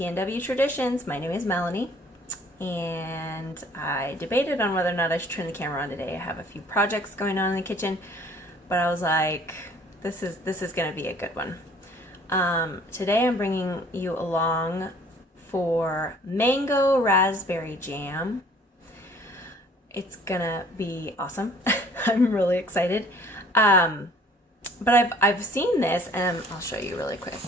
Traditions. My name is Melanie, and I debated on whether or not I should turn the camera on today. I have a few projects going on in the kitchen, but I was like, this is gonna be a good one. Today I'm bringing you along for mango raspberry jam. It's gonna be awesome. I'm really excited. But I've seen this, and I'll show you really quick.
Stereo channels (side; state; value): both; normal; correlation 0.54